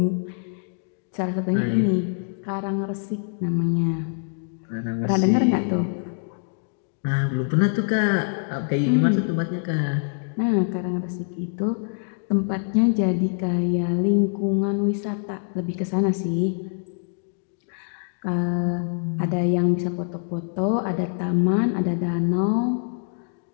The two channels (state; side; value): silent; right; digital silence